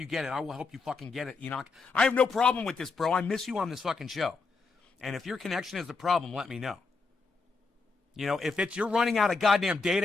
get it, I will help you fucking get it, Enoch. I have no problem with this, bro. I miss you on this fucking show. And if your connection is the problem, let me know. You know, if you're running out of goddamn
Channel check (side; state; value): right; quieter; 4.3 dB